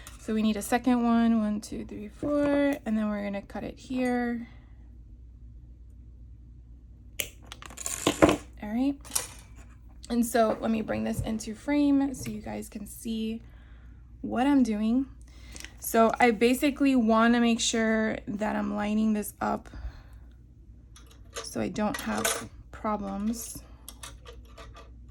So we need a second one, 1, 2, 3, 4, and then we're gonna cut it here. All right. And so let me bring this into frame so you guys can see what I'm doing. So I basically want to make sure that I'm lining this up so I don't have problems.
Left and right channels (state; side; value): identical; both; correlation 1.00